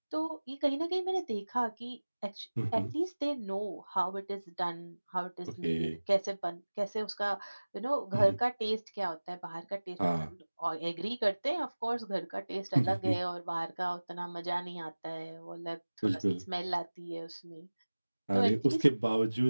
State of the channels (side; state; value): both; inverted; correlation -1.00